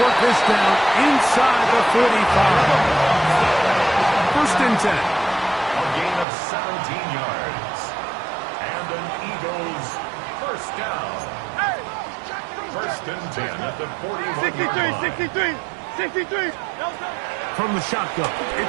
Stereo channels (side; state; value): left; drops out; at 6.2 s